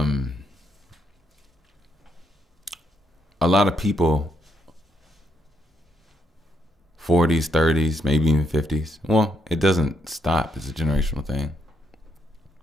lot of people, 40s, 30s, maybe even 50s. Well, it doesn't stop. It's a generational thing.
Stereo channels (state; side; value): normal; both; correlation 0.76